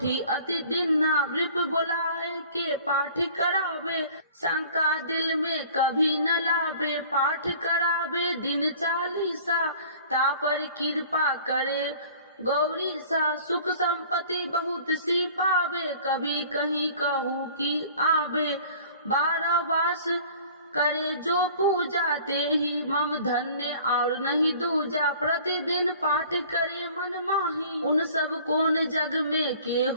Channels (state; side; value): inverted; both; correlation -0.48